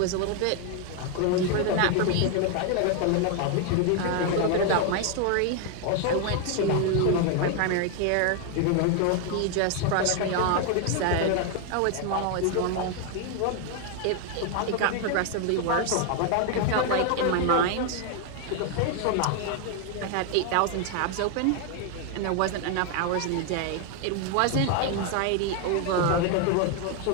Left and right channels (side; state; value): both; different; correlation 0.00